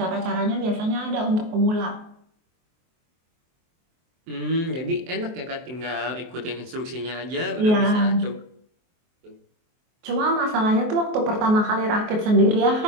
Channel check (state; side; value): late; left; 23 ms